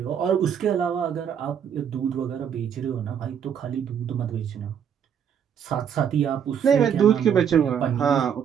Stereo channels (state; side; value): quieter; left; 8.1 dB